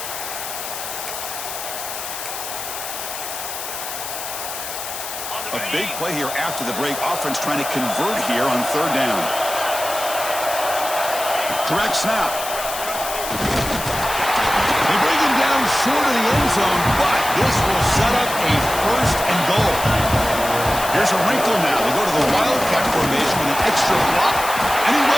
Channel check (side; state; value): left; noise; hiss, 7 dB below the sound